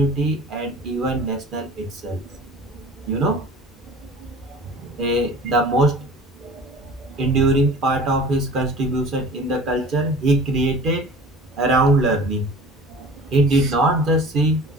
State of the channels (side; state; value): both; normal; correlation 0.42